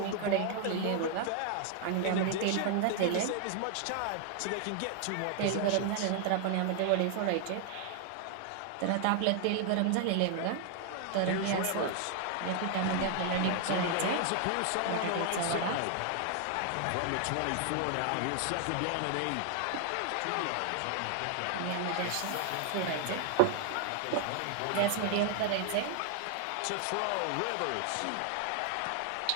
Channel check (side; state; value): both; different; correlation 0.00